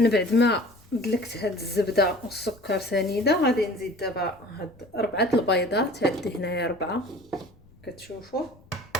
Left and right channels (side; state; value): left; noise; rumble, 27 dB below the sound